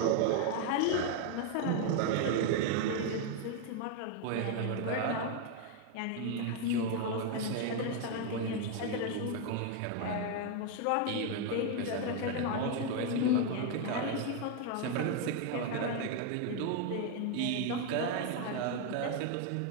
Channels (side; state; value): both; different; correlation 0.01